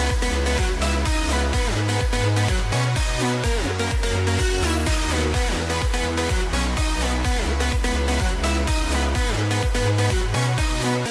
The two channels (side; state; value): both; identical; correlation 1.00